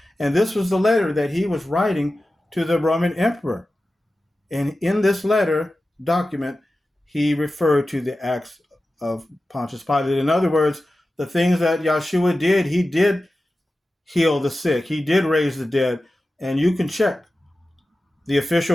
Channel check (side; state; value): both; normal; correlation 0.94